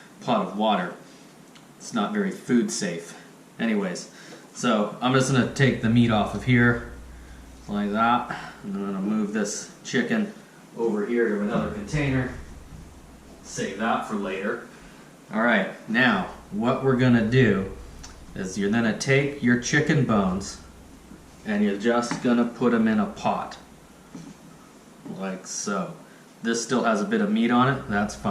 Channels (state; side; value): identical; both; correlation 1.00